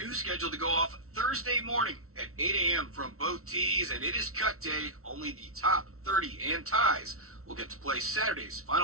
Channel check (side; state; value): left; late; 0.63 ms